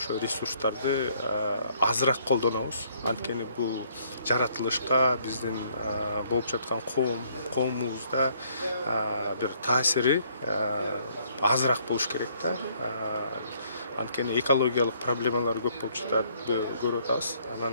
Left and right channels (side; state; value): both; inverted; correlation -0.65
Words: ресурстарды азыраак колдонобуз. Анткени бул жаратылышка биздин болуп жаткан коомубузда бир таасири азыраак болуш керек да. Анткени экологиялык проблемалар көп болуп жатат, көрүп атабыз.